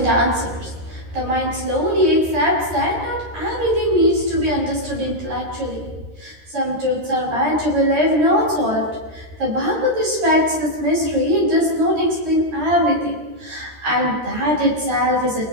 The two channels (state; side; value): late; left; 13 ms